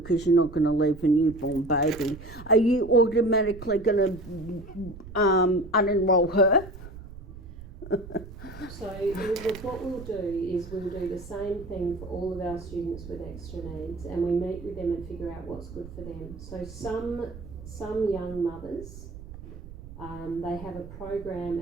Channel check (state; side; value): noise; right; rumble, 14 dB below the sound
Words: you're not going to leave a newborn baby. Are you automatically going to unenroll her? So what we'll do is we'll do the same thing for all of our students with extra needs, and we meet with them and figure out what's good for them. So some young mothers, they have a program